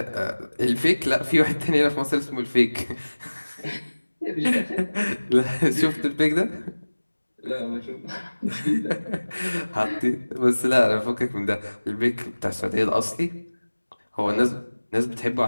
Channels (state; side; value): inverted; both; correlation -1.00